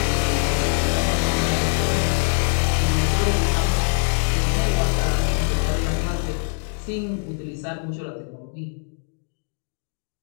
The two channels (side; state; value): right; silent; digital silence